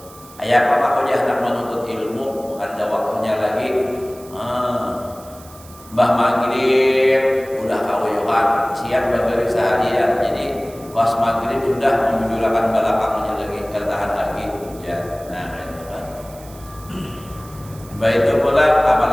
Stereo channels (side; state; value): right; noise; hiss, 22 dB below the sound